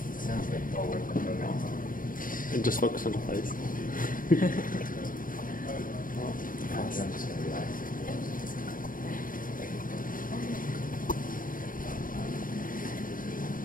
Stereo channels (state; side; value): late; right; 0.40 ms